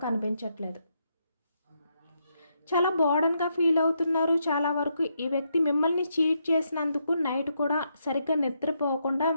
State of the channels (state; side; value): inverted; both; correlation -0.79